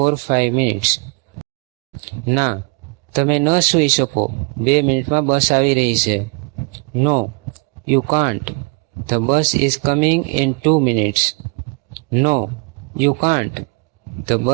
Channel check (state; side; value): quieter; left; 32.0 dB